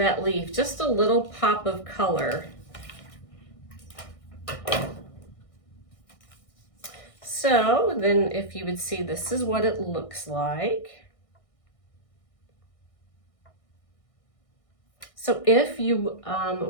leaf, just a little pop of color. So then if you would see, this is what it looks like. So if you,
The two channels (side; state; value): right; late; 1.6 ms